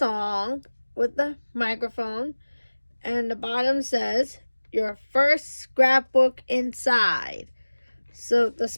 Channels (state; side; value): inverted; both; correlation -1.00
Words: with the microphone, and the bottom says, "Your first scrapbook inside." So the